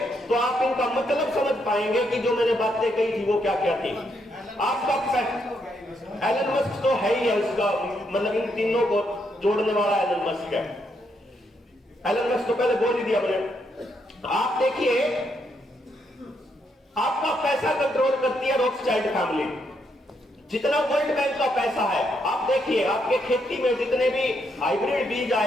तो आप इनका मतलब समझ पाएंगे कि जो मैंने बातें कही थी वो क्या क्या थी। आपका एलन मस्क तो है ही है, उसका मतलब इन तीनों को जोड़ने वाला एलन मस्क है। एलन मस्क तो पहले बोल ही दिया मैंने। आप देखिए, आपका पैसा कंट्रोल करती है रॉथस्चाइल्ड फैमिली। जितना वर्ल्ड बैंक का पैसा है, आप देखिए आपके खेती में जितने भी हाइब्रिड बीज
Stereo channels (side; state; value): both; normal; correlation 0.77